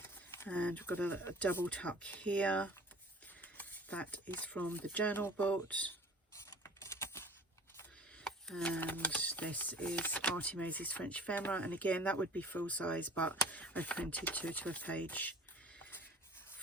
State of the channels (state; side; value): normal; both; correlation 0.46